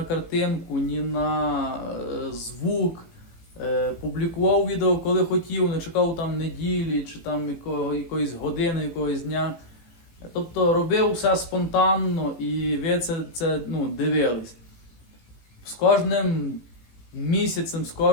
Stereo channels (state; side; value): late; right; 18 ms